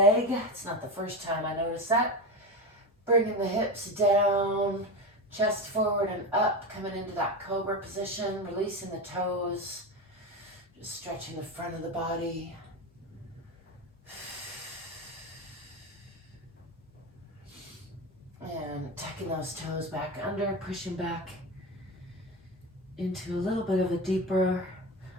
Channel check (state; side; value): normal; both; correlation 0.21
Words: It's not the first time I noticed that. Bringing the hips down, chest forward and up, coming into that cobra position, releasing the toes, just stretching the front of the body. And tucking those toes back under, pushing back into a little bit of a deeper